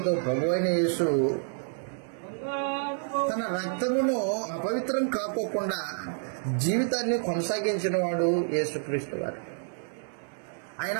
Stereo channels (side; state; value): left; silent; 59 dB below the other